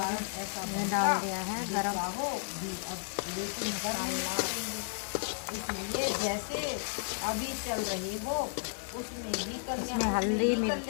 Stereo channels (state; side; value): silent; right; digital silence